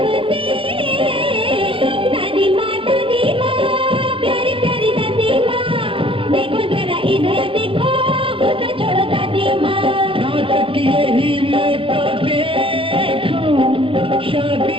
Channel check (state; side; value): late; left; 0.26 ms